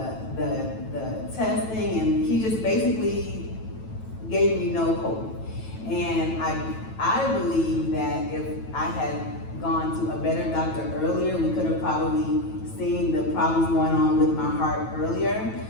testing, and he just basically gave me no hope. And I believe that if I had gone to a better doctor earlier, we could have probably seen the problems going on with my heart earlier.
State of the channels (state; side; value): late; right; 9.1 ms